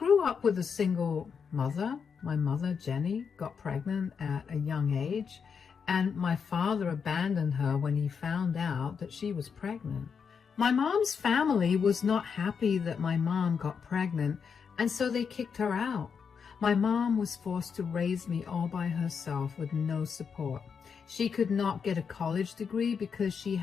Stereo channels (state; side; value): quieter; right; 6.3 dB